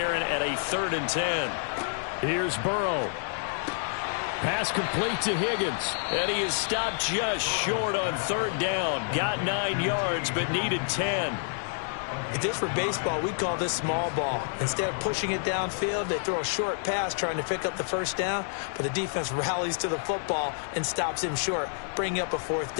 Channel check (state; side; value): silent; right; 59 dB below the other